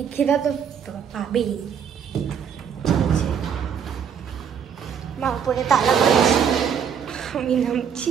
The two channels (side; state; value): left; quieter; 7.6 dB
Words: খিদা তো পাবেই। মা উপরে তালা মারছে, আমি নামছি।